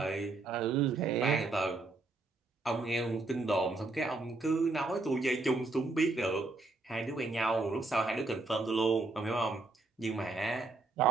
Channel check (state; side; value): quieter; left; 3.4 dB